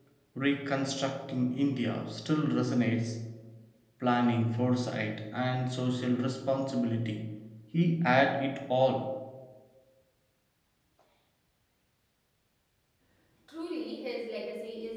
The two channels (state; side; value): identical; both; correlation 1.00